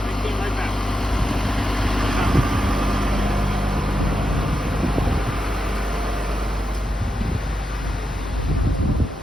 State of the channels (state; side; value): normal; both; correlation 0.87